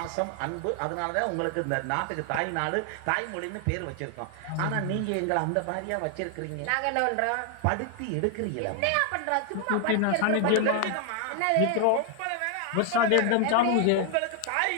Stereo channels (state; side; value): different; both; correlation 0.00